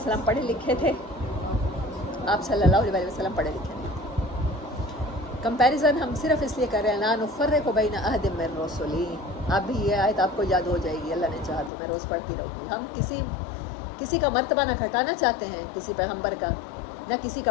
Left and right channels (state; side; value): drops out; right; at 11.7 s